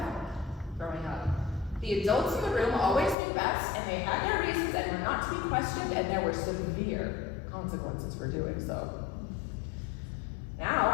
growing up. The adults in the room always knew best, and they had their reasons and were not to be questioned, and there were severe consequences for doing so. Now,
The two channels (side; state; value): right; drops out; at 3.2 s